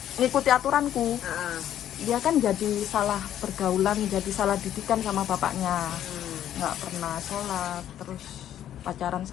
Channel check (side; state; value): right; quieter; 11.1 dB